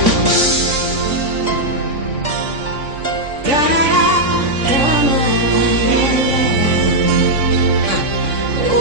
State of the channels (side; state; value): left; late; 3.5 ms